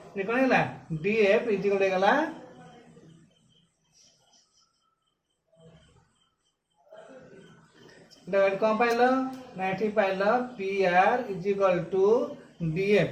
ये कौन है डी एफ इजिकल होगा कौन पाइल ना ये पाइल P R is equal to D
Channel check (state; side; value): identical; both; correlation 1.00